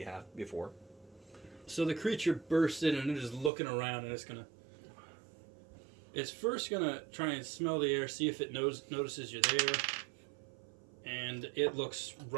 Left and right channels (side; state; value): left; drops out; at 3.5 s